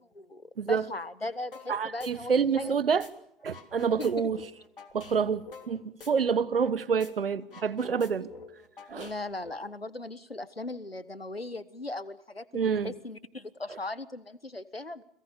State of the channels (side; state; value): left; quieter; 4.9 dB